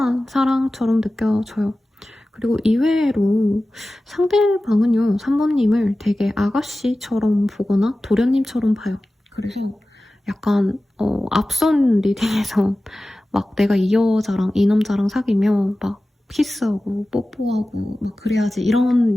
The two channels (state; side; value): normal; both; correlation 0.96